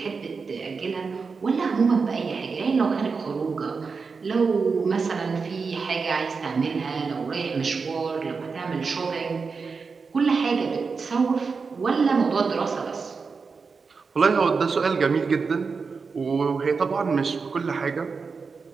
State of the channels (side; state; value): left; quieter; 4.9 dB